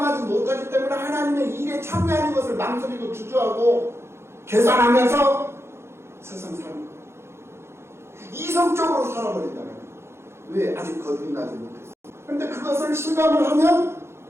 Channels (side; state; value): left; late; 0.12 ms